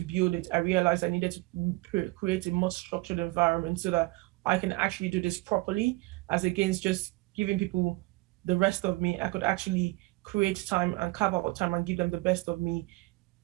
build it, I realized I needed to create a more structured environment so that I can actually do this properly, as against just giving people the rest of me. I could actually create time and carve out time and give them the best of me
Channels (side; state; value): left; quieter; 22.5 dB